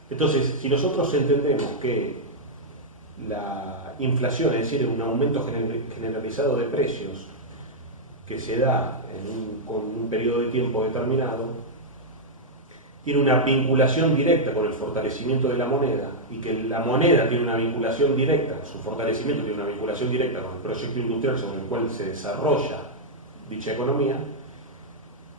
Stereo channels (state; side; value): normal; both; correlation -0.06